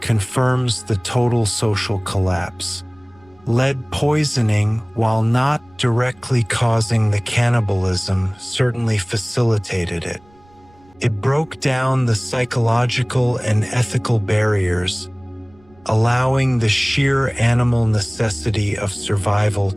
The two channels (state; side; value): noise; right; rumble, 30 dB below the sound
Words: the total social collapse. Lead poisoning, while not directly causing the cannibalism, certainly facilitated it. It broke down the psychological and ethical barriers, allowing the sheer animal necessity of survival